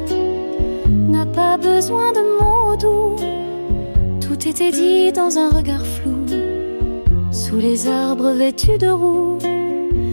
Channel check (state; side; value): inverted; both; correlation -1.00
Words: n'a pas besoin de mots doux, tout était dit dans un regard flou, sous les arbres vêtus de roux.